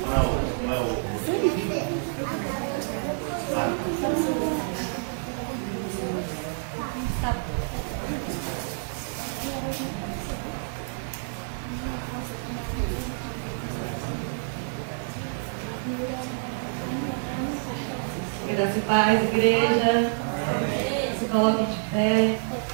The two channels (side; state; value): left; silent; digital silence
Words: Não é o. Graça e paz, igreja. Se coloquem de pé.